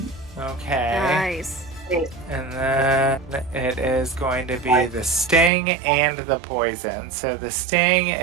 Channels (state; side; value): drops out; left; at 5.5 s